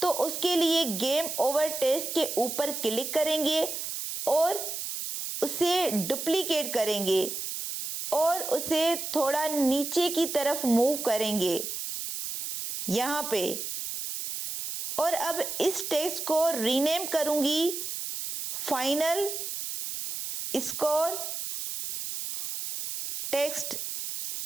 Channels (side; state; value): right; noise; hiss, 5 dB below the sound